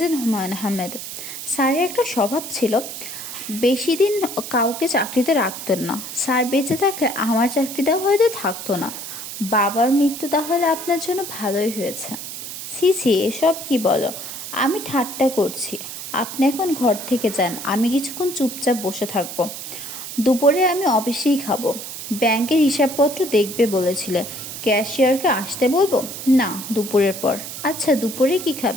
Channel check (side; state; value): right; noise; hiss, 9 dB below the sound